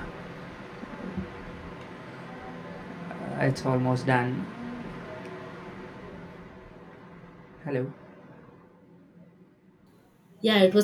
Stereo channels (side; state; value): both; identical; correlation 1.00